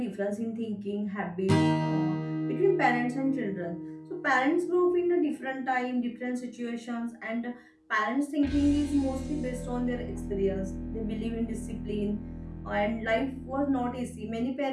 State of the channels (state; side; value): identical; both; correlation 1.00